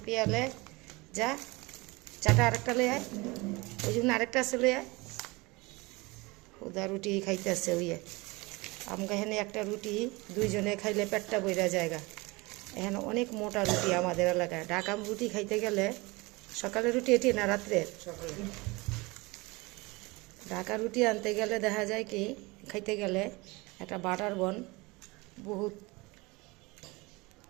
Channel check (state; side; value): quieter; left; 24.2 dB